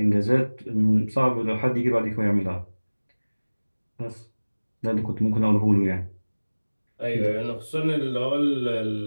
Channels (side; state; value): both; inverted; correlation -1.00